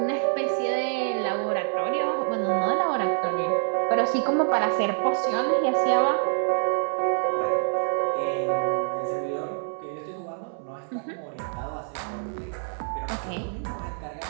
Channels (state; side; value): silent; left; 61 dB below the other